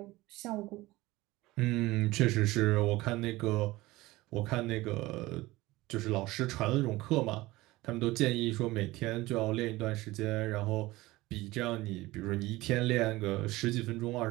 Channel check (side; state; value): left; quieter; 19.2 dB